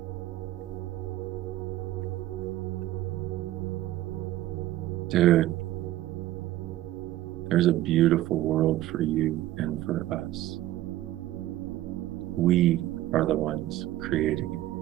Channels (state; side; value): quieter; left; 14.9 dB